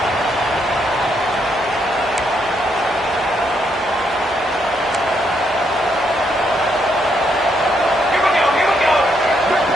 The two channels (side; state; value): both; normal; correlation 0.75